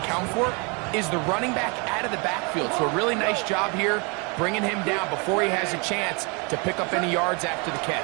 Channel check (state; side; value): quieter; left; 31.9 dB